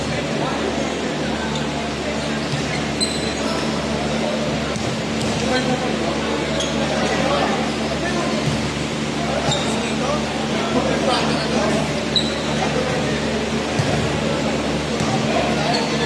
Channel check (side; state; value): both; identical; correlation 1.00